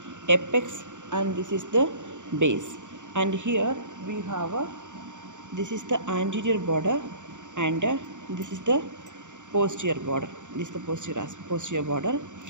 apex, and this is the base. And here we have this is the anterior border, and this is the posterior border. This is the posterior border,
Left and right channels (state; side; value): late; left; 0.85 ms